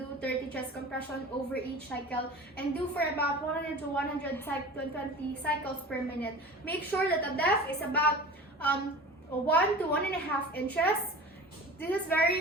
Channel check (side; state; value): both; normal; correlation 0.37